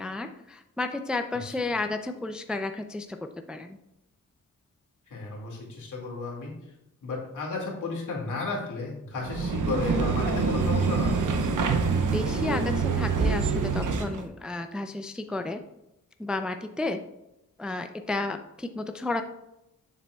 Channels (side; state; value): both; normal; correlation 0.51